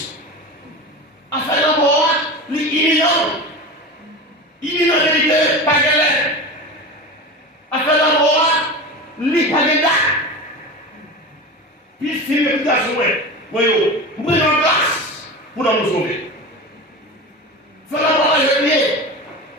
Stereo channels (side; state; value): both; normal; correlation 0.28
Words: à faire la mort, l'imminent vérité, pas galère. À faire la mort, l'hypagéda. Puis il filme le garçon, voyez, vous prenez en place pour nous sauver. Faire la mort à jeunier.